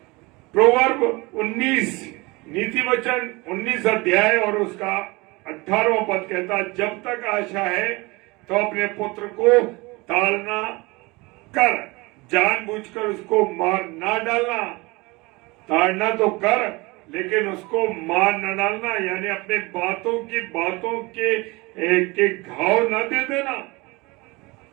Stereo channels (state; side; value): quieter; left; 24.2 dB